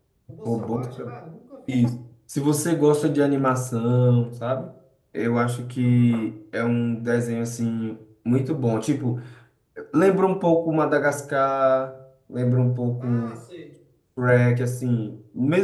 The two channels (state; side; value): identical; both; correlation 1.00